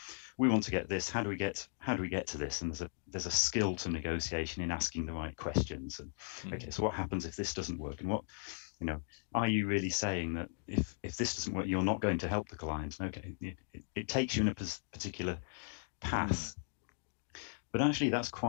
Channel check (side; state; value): right; silent; digital silence